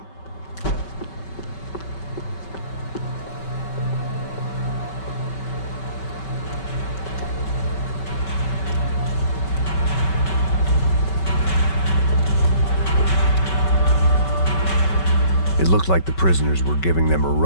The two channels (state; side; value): late; right; 5.2 ms